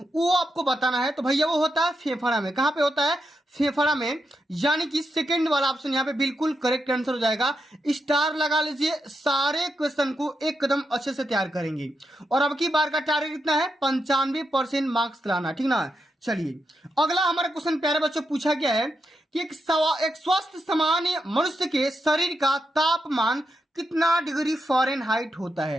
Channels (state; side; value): normal; both; correlation 0.84